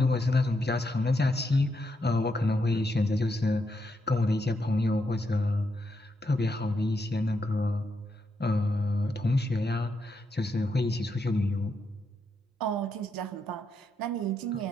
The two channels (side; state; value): both; normal; correlation 0.81